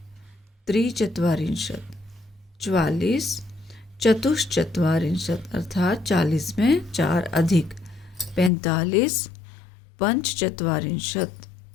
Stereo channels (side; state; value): right; drops out; at 8.5 s